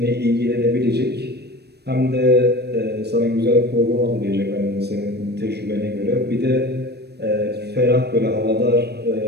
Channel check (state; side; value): late; left; 0.47 ms